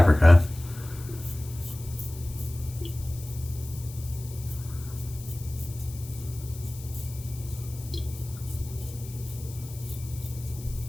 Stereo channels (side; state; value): left; noise; hiss, 16 dB below the sound